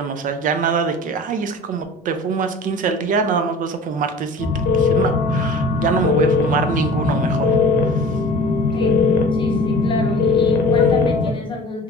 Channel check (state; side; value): normal; both; correlation 0.41